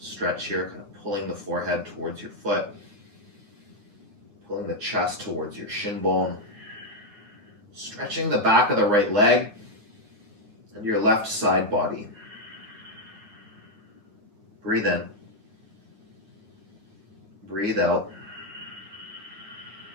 stretch here, kind of pulling the forehead towards your foot, pulling the chest towards your shin bone, stretching the back of the right leg and your left side body. Breathe in. Breathe out.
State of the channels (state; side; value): late; left; 9.6 ms